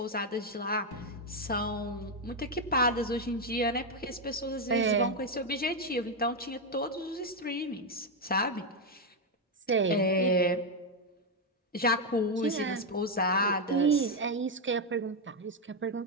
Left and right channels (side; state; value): both; normal; correlation 0.04